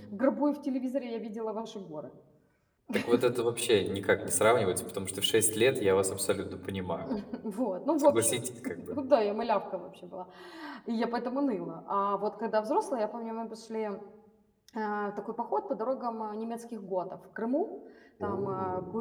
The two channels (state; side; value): identical; both; correlation 1.00